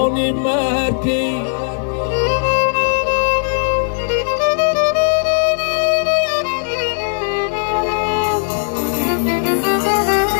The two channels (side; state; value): right; silent; digital silence